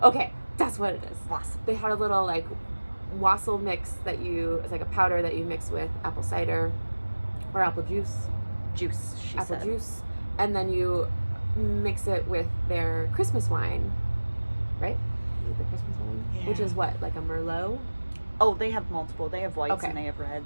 Okay, that's what it is. Wassail. They had a little like wassail mix it's like a powder that you mix with apple cider or apple juice. She said. Juice, and then you mix it with their Christmas wine, right? Is it the Christmas wine? Yeah. Which is what, like a Merlot? Oh, they have multiple. They have whites Okay. and they have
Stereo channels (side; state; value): both; inverted; correlation -1.00